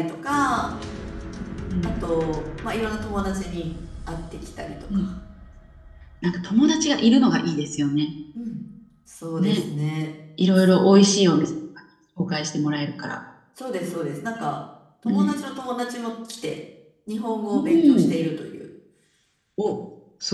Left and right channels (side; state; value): both; identical; correlation 1.00